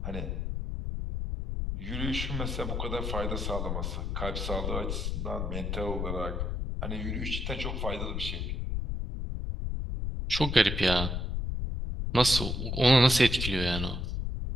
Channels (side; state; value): left; noise; rumble, 2 dB below the sound